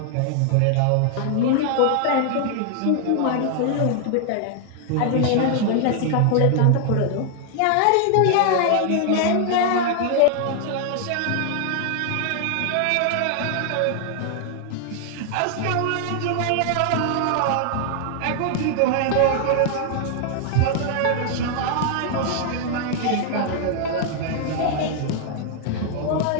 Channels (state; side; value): different; both; correlation 0.00